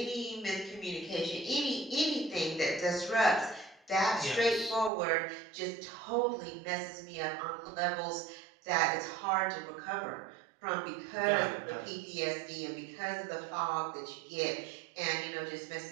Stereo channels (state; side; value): drops out; left; at 4.9 s